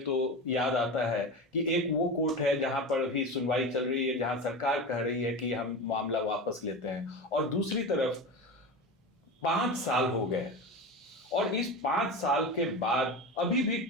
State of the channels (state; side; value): normal; both; correlation 0.25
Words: तो याद आता है कि एक वो कोर्ट है जहां पर भी सुनवाई चल रही है, जहां सरकार कह रही है कि हम मामला वापस लेते हैं, और दूसरी तरफ 5 साल हो गए, और इस 5 साल के बाद अभी भी